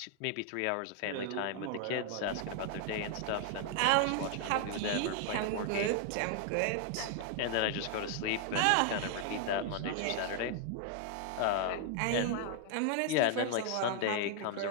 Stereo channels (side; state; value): both; different; correlation 0.00